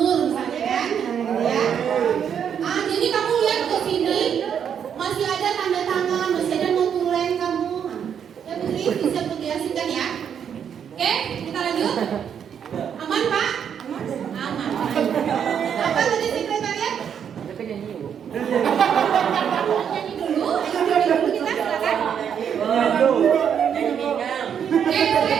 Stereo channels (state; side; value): quieter; left; 8.1 dB